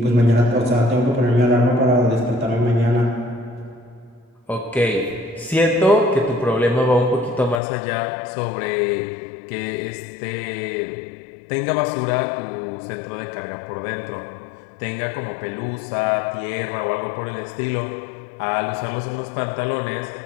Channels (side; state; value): right; drops out; at 7.6 s